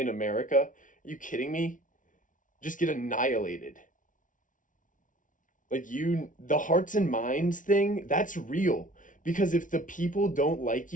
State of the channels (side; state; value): right; late; 0.38 ms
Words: America. Are you kidding me? Just get annihilated. Like the hearts and minds thing, that's real. Because if the people don't like